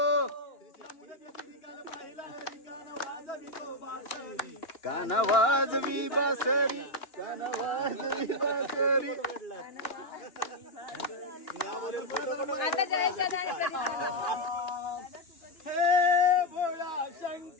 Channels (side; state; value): right; late; 2.9 ms